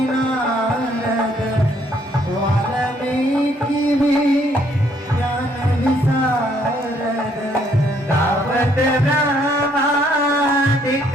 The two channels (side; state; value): both; normal; correlation 0.67